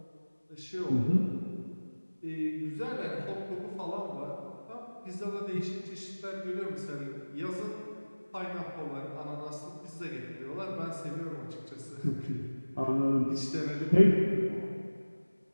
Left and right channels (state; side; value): inverted; both; correlation -1.00